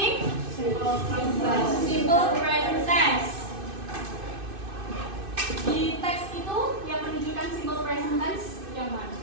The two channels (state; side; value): late; left; 2.6 ms